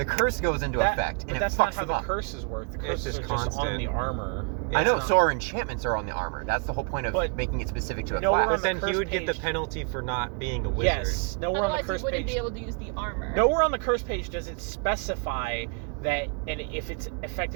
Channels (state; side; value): quieter; left; 33.9 dB